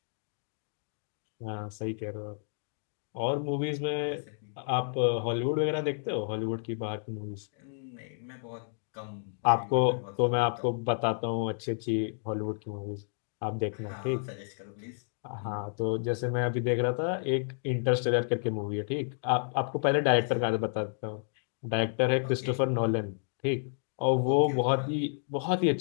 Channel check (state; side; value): silent; right; digital silence